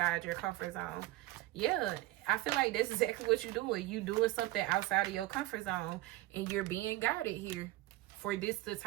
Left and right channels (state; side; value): quieter; left; 17.7 dB